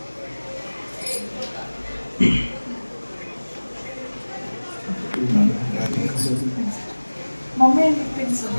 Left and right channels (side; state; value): both; inverted; correlation -1.00